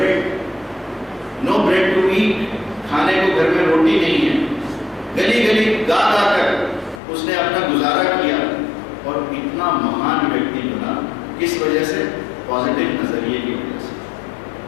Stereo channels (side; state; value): right; drops out; at 7.0 s